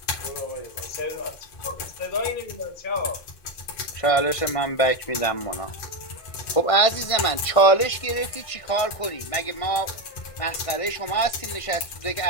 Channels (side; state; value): right; late; 1.5 ms